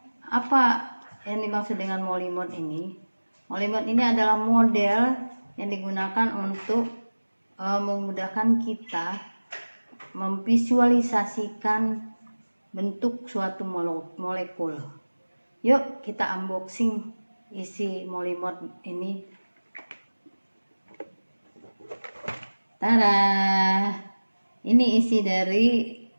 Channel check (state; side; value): inverted; both; correlation -1.00